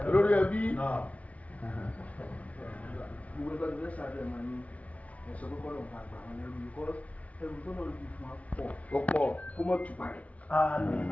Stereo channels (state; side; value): late; right; 0.067 ms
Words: olórí ẹbí. gbogbo ẹgbẹ́ tó fẹ́ sáré ẹ̀ máa ní ẹ̀sọ́ kọ́kọ́ lọ́wọ́ bá gbà wọn lẹ́rú yìí ẹrù tó náà lè fún wa pọ̀. ó pọ̀. kó mọ̀ tù parẹ́.